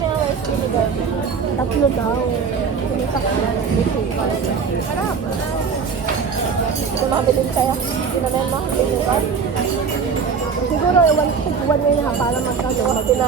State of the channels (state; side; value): quieter; left; 5.9 dB